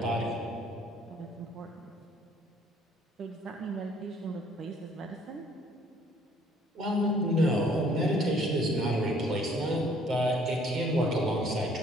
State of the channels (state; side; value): normal; both; correlation 0.60